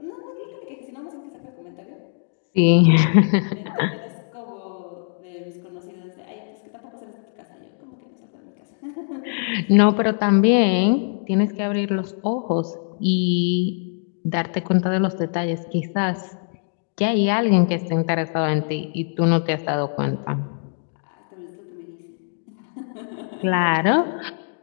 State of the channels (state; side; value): silent; right; digital silence